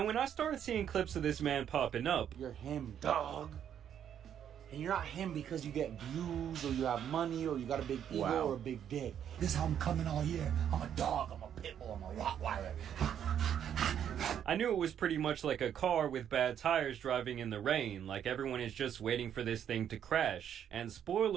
when I started seeing clips of this man popping up, "You're him, dog. And you're not him because you get views or you have money or you got a big ego or a big dick. This is how I'm coming all year. I'm a dog, I'm a pit bull, I'm a Rottweiler." I knew it was pretty much like a car with bad tires driving in the rain, like everyone is just waiting for this thing to crash. And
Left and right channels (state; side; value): quieter; left; 9.3 dB